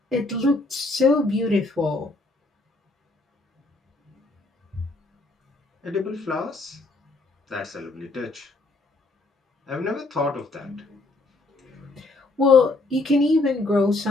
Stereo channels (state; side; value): quieter; right; 3.1 dB